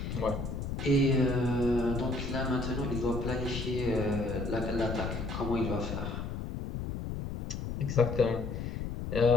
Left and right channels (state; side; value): noise; left; rumble, 5 dB below the sound